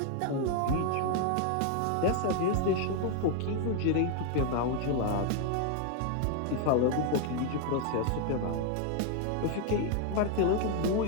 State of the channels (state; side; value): different; both; correlation 0.01